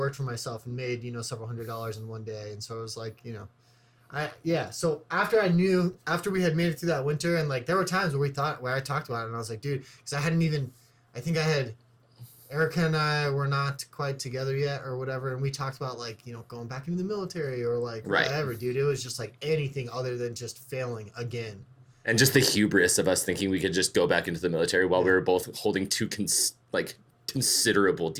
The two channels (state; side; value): identical; both; correlation 1.00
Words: for myself and made several $100s in one day, and so it was So after we had made it through that winter, and there were times where I talked about it, and I was like, dude, because Erica and I were not quite together yet or whatever, and we talked about going back into the military or whatever, dude. It was just anything other than just failing again. And just the hubris of us thinking we could just go back into the military while we were both holding two considerable